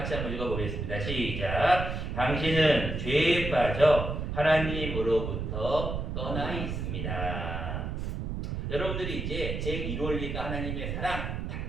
한번 읽어보겠습니다. 시작. 당신은 죄에 빠져 하나님으로부터 떠나 있습니다. 여러분들이 이제 제 1원리가 하나님의 사랑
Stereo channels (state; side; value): noise; right; rumble, 3 dB below the sound